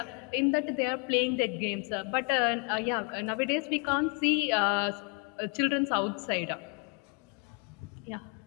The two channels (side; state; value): right; quieter; 34.1 dB